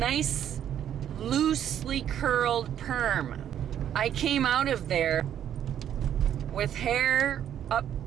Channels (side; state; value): left; quieter; 10.1 dB